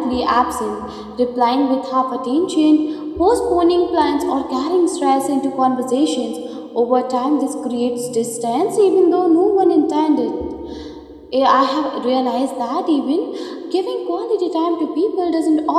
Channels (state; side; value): identical; both; correlation 1.00